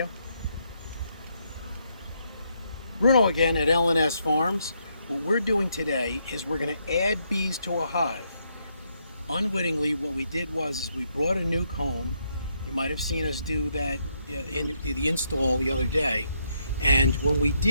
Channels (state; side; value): inverted; both; correlation -0.76